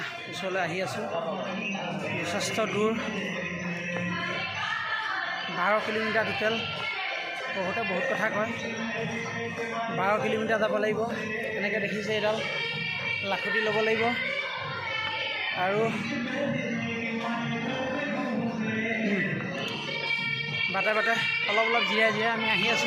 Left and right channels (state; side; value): identical; both; correlation 1.00